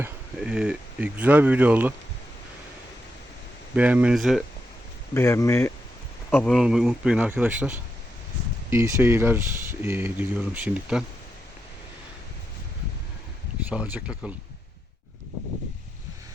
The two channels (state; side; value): normal; both; correlation 0.85